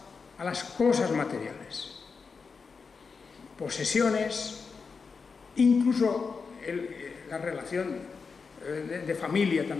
cosas materiales, posesiones, incluso la relación de familia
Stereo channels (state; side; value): quieter; right; 5.1 dB